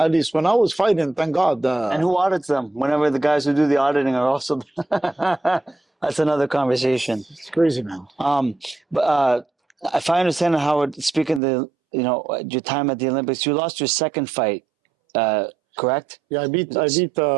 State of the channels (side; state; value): left; drops out; at 11.4 s